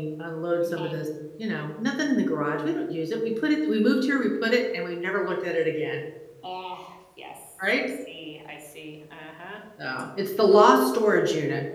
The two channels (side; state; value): both; identical; correlation 1.00